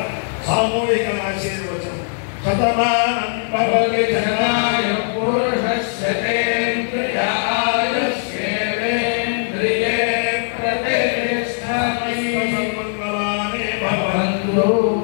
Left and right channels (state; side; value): silent; right; digital silence